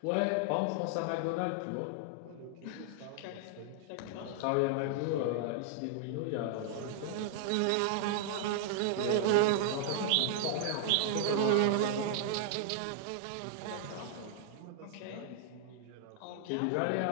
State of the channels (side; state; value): both; different; correlation -0.01